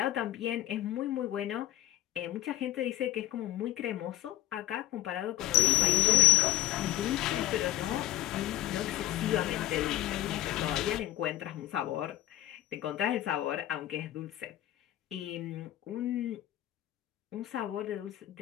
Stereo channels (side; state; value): right; quieter; 14.8 dB